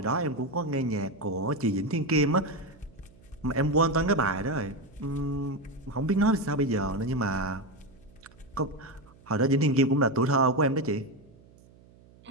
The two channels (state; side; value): noise; right; hum, 26 dB below the sound